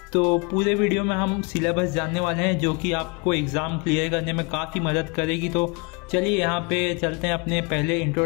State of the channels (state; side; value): quieter; right; 31.0 dB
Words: तो पूरे वीडियो में हम सिलेबस जानने वाले हैं, जो कि आपको एग्ज़ाम क्लियर करने में काफ़ी मदद करेगी। तो चलिए यहाँ पे चलते हैं अपने पहले